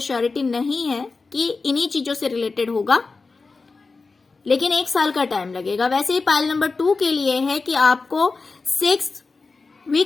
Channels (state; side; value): quieter; right; 4.1 dB